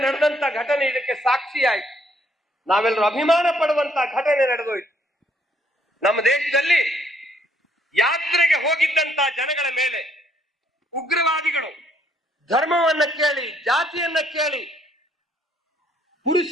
ನಡೆದಂತ ಘಟನೆ ಇದಕ್ಕೆ ಸಾಕ್ಷಿಯಾಯಿತು. ನಾವೆಲ್ಲರೂ ಅಭಿಮಾನ ಪಡುವಂತ ಘಟನೆ ನಡೆದೋಯ್ತು. ನಮ್ಮ ದೇಶದಲ್ಲಿ ಯಾತ್ರೆಗೆ ಹೋಗಿದ್ದಂತ ಜನಗಳ ಮೇಲೆ ಉಗ್ರವಾದಿಗಳು ಧರ್ಮವನ್ನ ಕೇಳಿ, ಜಾತಿಯನ್ನ ಕೇಳಿ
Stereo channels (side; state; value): both; normal; correlation 0.68